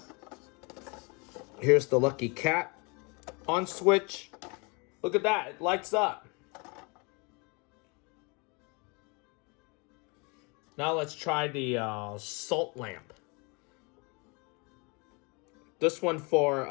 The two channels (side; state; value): right; quieter; 30.3 dB